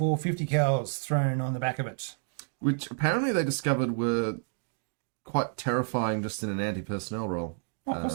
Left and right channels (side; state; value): left; silent; digital silence